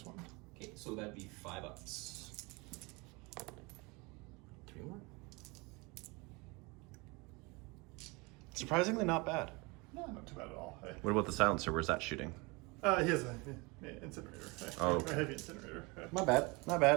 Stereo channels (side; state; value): left; quieter; 26.7 dB